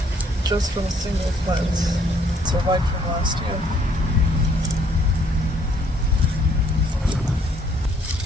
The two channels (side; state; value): both; normal; correlation 0.65